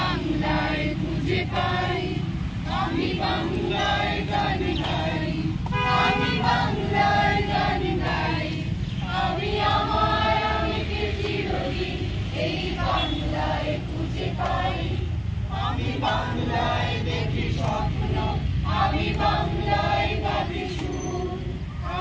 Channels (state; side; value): identical; both; correlation 1.00